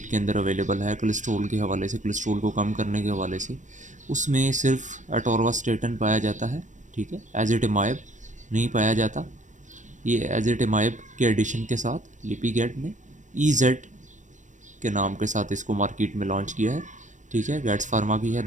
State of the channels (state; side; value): late; left; 0.36 ms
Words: के अंदर अवेलेबल है कोलेस्ट्रॉल के हवाले से, कोलेस्ट्रॉल को कम करने के हवाले से, उसमें सिर्फ अटोरवास्टेटिन पाया जाता है, ठीक है, एज़ेटिमाइब नहीं पाया जाता। ये एज़ेटिमाइब के एडिशन के साथ लिपिगेट ने EZ के नाम के साथ इसको मार्केट में लॉन्च किया है, ठीक है। गैट्स फार्मा की है,